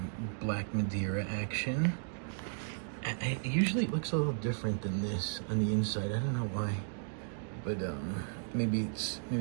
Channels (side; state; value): left; silent; digital silence